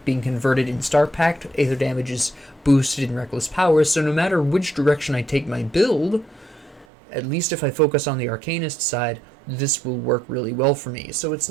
being converted in Star Pact. Aether damage is boosted in Reckless Power. So no matter which direction I take my build, at least if I focus on the Arcanist side, this will work really well for me. So it's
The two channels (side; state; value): left; drops out; at 6.9 s